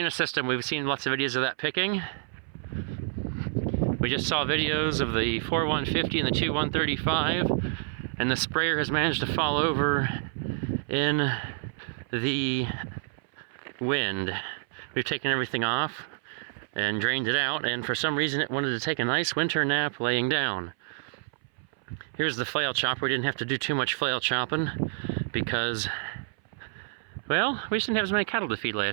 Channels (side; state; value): left; silent; 57 dB below the other